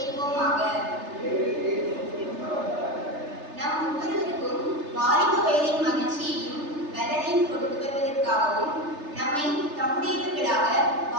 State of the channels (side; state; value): left; late; 3.3 ms